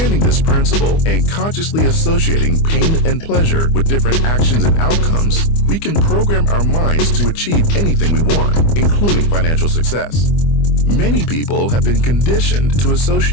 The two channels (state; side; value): late; right; 25 ms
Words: this principle and consciously associating pain and pleasure with different actions and outcomes, we can program our minds to achieve anything we want, including financial success. Many people have been conditioned to